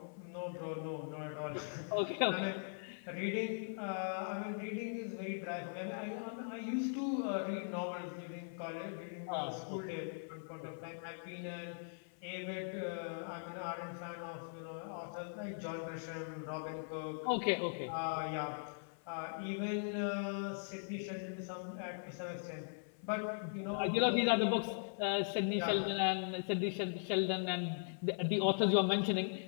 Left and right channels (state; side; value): silent; right; 51 dB below the other